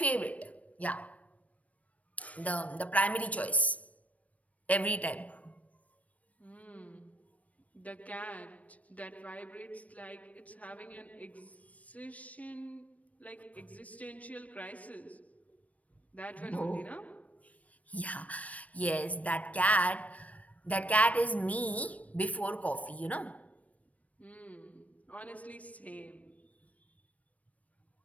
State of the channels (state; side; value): late; right; 0.068 ms